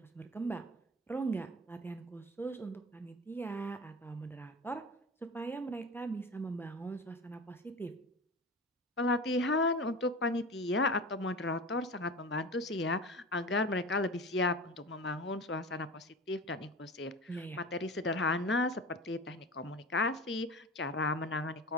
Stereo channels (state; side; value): normal; both; correlation 0.32